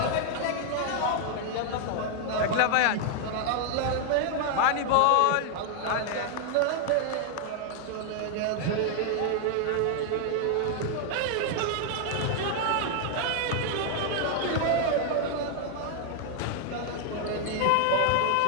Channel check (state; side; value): different; both; correlation 0.00